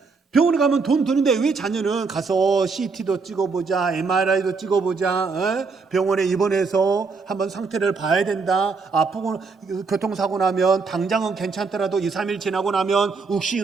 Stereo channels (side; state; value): left; quieter; 4.6 dB